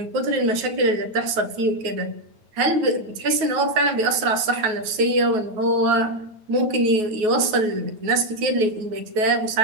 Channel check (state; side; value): late; left; 9.4 ms